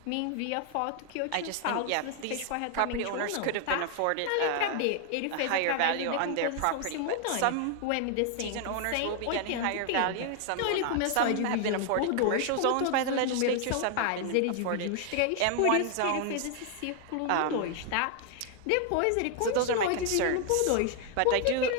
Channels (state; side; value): different; both; correlation 0.00